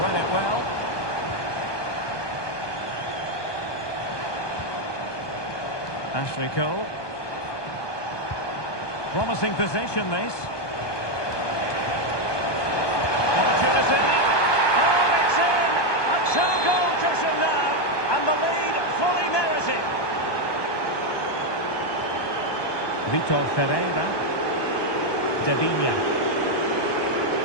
it well. Ashley Cole. Promising position, this. Opportunity. Oh, it's in! A two-goal cushion now, and the lead fully merited. Vitor Ferreira. Devinia.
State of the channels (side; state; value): right; late; 1.2 ms